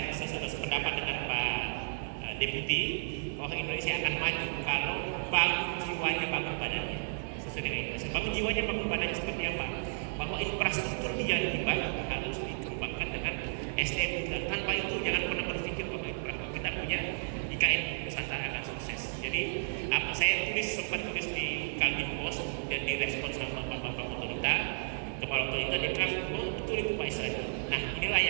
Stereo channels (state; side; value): silent; left; digital silence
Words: sudah sependapat dengan Pak Deputi bahwa Indonesia akan maju kalau bangun jiwanya, bangun badannya sesuai dengan Indonesia. Bangun jiwanya, bangun badannya seperti apa? Bahwa infrastruktur yang dibangun harus dikembangkan dengan SDM. Tanpa itu jangan pernah berpikir bahwa kita punya IKN Nusantara akan sukses. Jadi apa saya sempat tulis di Kaltim Post dan direspon sama Bapak otorita, kepala otorita dia bilang, oh betul itu Pak Israel. Nah inilah